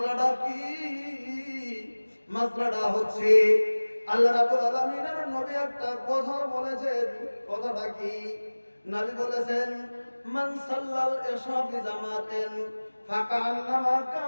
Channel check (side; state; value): both; inverted; correlation -1.00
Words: কি? মাসলাটা হচ্ছে আল্লাহ রাব্বুল আলামিনের নবী একটা কথা বলেছেন। কথাটা কি? নবী বলেছেন, মান সাল্লাল ইশা ফি জামাতিন ফাকান্নামা